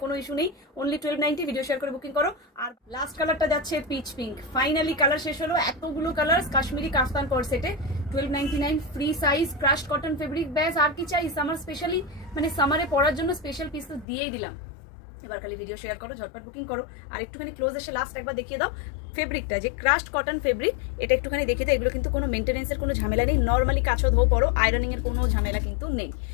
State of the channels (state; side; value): drops out; right; at 14.1 s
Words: কোনো ইস্যু নেই। অনলি 1290, ভিডিও শেয়ার করে বুকিং করো। আর লাস্ট কালারটা যাচ্ছে পিচ পিঙ্ক। ফাইনালি কালার শেষ হলো। এতগুলো কালার কাশ্মীরি কাফতান কোট সেটে 1299 free size crush cotton fabric. ব্যাস আর কি চাই, সামার স্পেশালি মানে সামারে পরার জন্য স্পেশাল পিস তো দিয়েই দিলাম। এবার খালি ভিডিও শেয়ার করো, ঝটপট বুকিং করো। আর একটুখানি ক্লোজ এসে লাস্ট একবার দেখিয়ে দাও ফেব্রিকটা, যে ক্রাশড কটন ফেব্রিক, এটা একটুখানি দেখিয়ে দাও। এগুলো কিন্তু কোনো মেনটেন্যান্সের কোনো ঝামেলা নেই। নর্মালি কাছো ধো পরো, আয়রনিং এর কোনো ঝামেলা কিন্তু নেই।